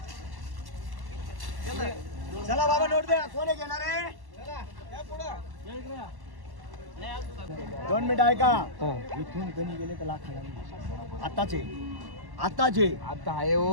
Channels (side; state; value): left; late; 1.1 ms